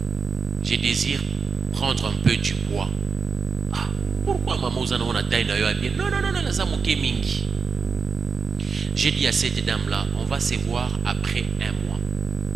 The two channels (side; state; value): left; quieter; 5.4 dB